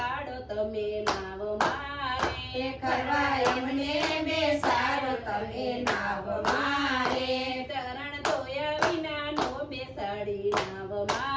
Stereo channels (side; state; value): both; identical; correlation 1.00